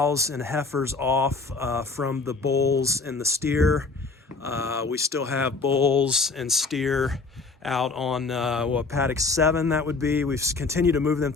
and heifers off from the bulls and the steer. We still have bulls and steer out on paddock 7, that would be. We've continued to move them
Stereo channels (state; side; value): quieter; right; 4.0 dB